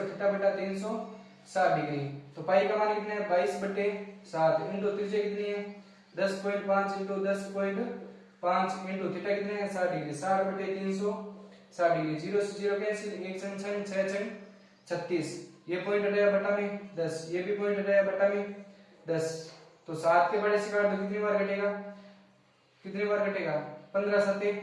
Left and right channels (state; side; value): identical; both; correlation 1.00